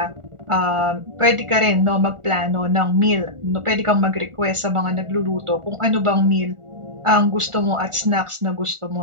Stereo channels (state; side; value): late; left; 1.4 ms